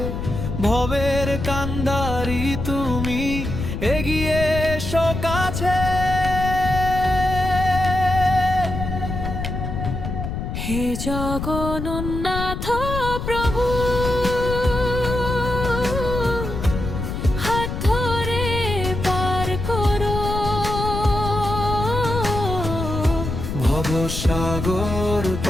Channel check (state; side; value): noise; left; rumble, 4 dB below the sound